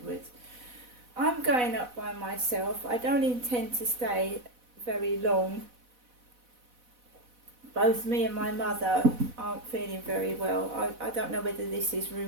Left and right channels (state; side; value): late; left; 4.1 ms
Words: I'm going up by myself. I don't intend to stay very long. Both me and my mother aren't feeling very well. I don't know whether this is